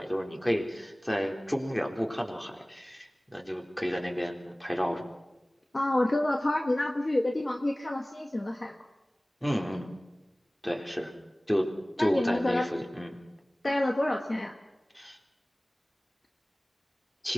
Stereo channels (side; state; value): both; normal; correlation 0.98